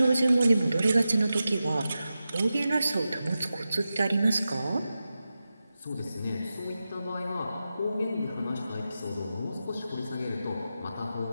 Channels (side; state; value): both; inverted; correlation -0.92